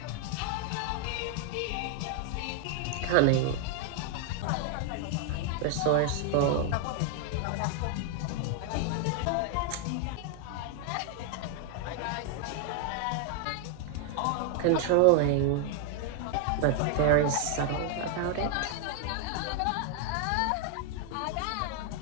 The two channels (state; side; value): different; both; correlation 0.00